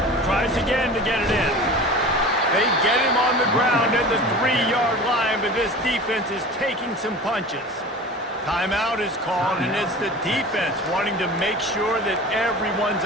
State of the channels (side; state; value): both; normal; correlation 0.37